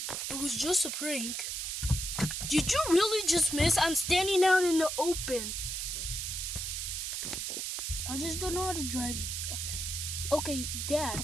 It was just a prank. Did you really just miss? I'm standing out in the open. I just don't know how to drive. Okay, Dad,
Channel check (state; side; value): noise; right; hiss, 3 dB below the sound